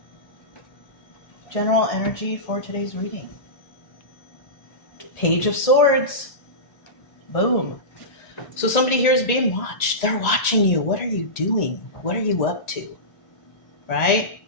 General energy for today's reading. Page of Swords. Boom. So somebody here is being watched. They're watching you. What are you doing? What are you up to? Right?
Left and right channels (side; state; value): right; late; 1.8 ms